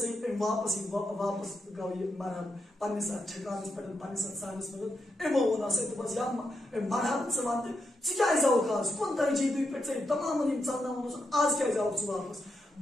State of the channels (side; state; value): both; normal; correlation 0.84